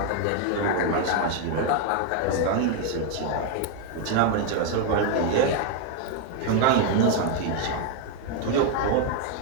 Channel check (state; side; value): different; both; correlation 0.00